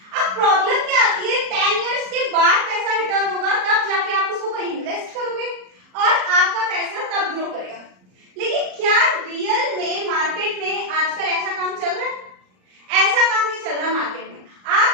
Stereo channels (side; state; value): left; late; 38 ms